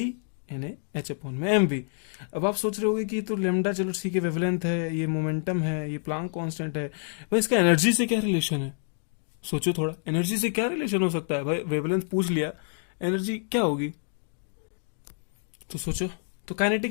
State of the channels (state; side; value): silent; right; digital silence